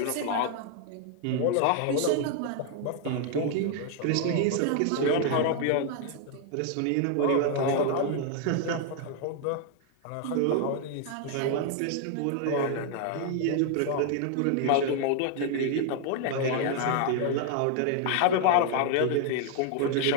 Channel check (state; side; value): different; both; correlation 0.00